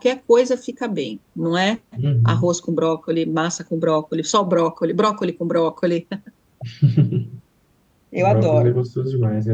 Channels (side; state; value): both; identical; correlation 1.00